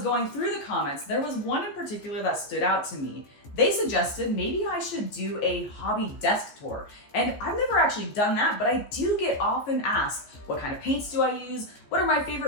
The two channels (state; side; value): late; right; 14 ms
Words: going through the comments, there was one in particular that stood out to me. They suggested maybe I should do a hobby desk tour, and I've never actually done that, but I do get often asked, what kind of paints do I use? What are my